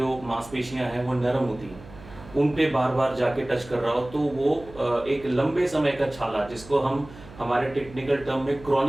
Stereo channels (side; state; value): right; noise; hum, 19 dB below the sound